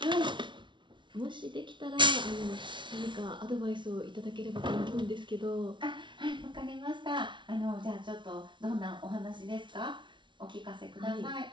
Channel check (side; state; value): left; late; 0.24 ms